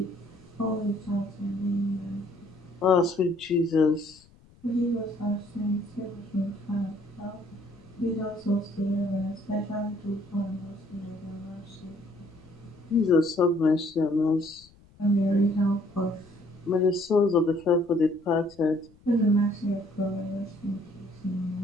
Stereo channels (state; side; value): noise; left; rumble, 27 dB below the sound